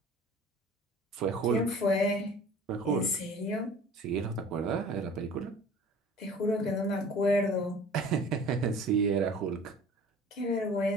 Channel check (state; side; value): normal; both; correlation 0.45